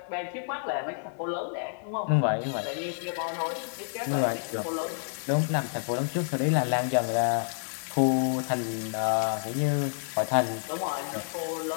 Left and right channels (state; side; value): silent; right; digital silence